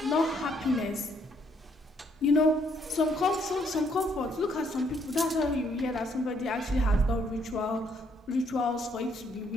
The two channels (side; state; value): both; normal; correlation 0.70